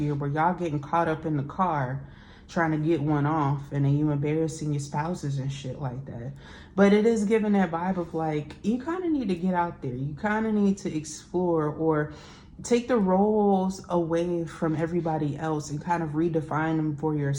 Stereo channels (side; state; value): both; identical; correlation 1.00